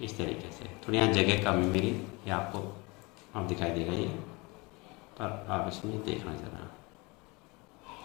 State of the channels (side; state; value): right; quieter; 26.1 dB